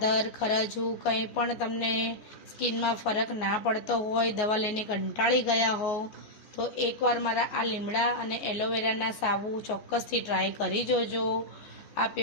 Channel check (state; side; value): late; right; 14 ms